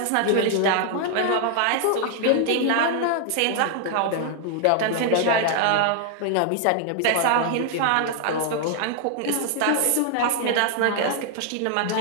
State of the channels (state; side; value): different; both; correlation 0.00